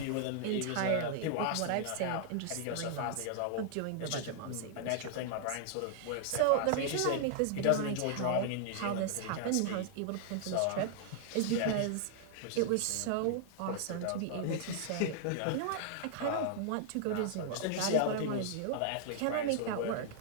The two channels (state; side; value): different; both; correlation -0.01